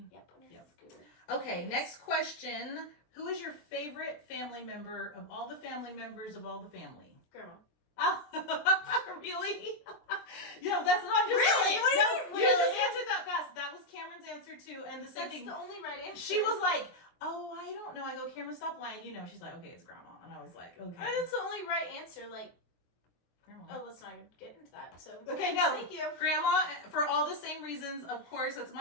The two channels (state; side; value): late; right; 23 ms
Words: Yep. On your scooter. Okay, Yes. next question. Who is your favorite family member of all the family members of all the family? Grandma. Oh, really? Yeah, that's not just Really? saying. What do you No, mean, you just really? answered that fast. That was Cameron's answer too, and the same That's thing. the only right answer. She was like, "Oh, I don't know." I go, "Cameron, stop lying." You know, she's like, "Okay, it's Grandma," and I was like, "Okay." That's the only right answer. Like, Grandma. oh, let's not even get into that. So Okay, no. Thank you. Grandma, for all the same reasons, of course. It's